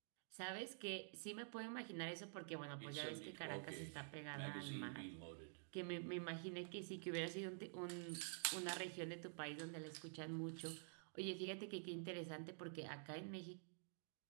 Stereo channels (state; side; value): silent; left; digital silence